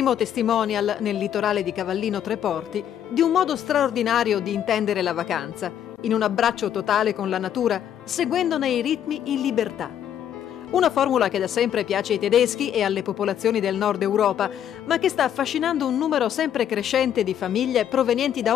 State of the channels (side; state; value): right; quieter; 9.9 dB